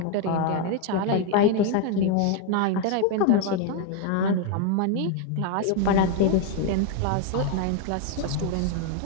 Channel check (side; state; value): both; different; correlation 0.01